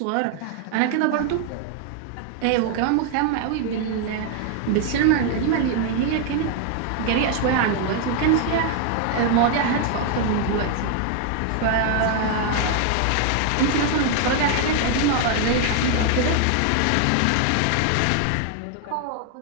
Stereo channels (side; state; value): both; different; correlation 0.00